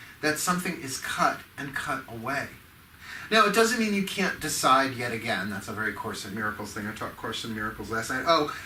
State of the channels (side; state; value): both; identical; correlation 1.00